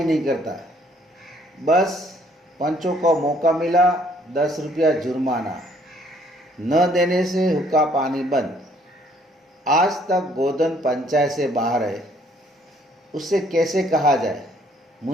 नहीं करता। बस पंचों को मौका मिला 10 रुपया जुर्माना, न देने से हुक्का पानी बंद। आज तक गोधन पंचायत से बाहर है, उससे कैसे कहा जाए,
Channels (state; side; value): normal; both; correlation 0.63